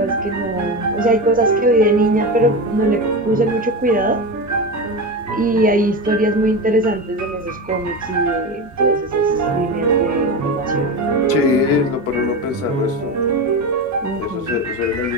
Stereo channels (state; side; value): normal; both; correlation 0.21